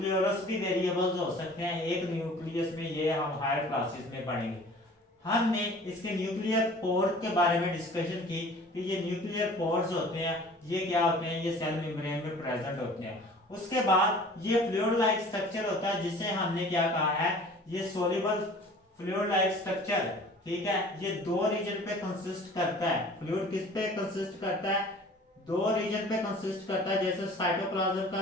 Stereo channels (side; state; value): both; normal; correlation 0.47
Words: भी वेरिएबल्स हो सकते हैं। एक न्यूक्लियस में ये हम हायर क्लासेस में पढ़ेंगे। हमने इसके न्यूक्लियर पोर के बारे में डिस्कशन की कि ये न्यूक्लियर पोर्स होते हैं, ये क्या होते हैं, ये सेल मेम्ब्रेन में प्रेजेंट होते हैं। उसके बाद ये फ्लूइड लाइक स्ट्रक्चर होता है जिसे हमने क्या कहा है, ये सोल्यूबल फ्लूइड लाइक स्ट्रक्चर, ठीक है। ये दो रीजन पे कंसिस्ट करता है। फ्लूइड किस पे कंसिस्ट करता है, दो रीजन पे कंसिस्ट करता है। जैसे साइटोप्लाज्म